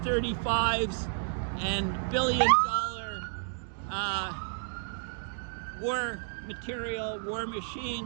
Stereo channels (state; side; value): silent; left; digital silence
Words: and billion-dollar war material, war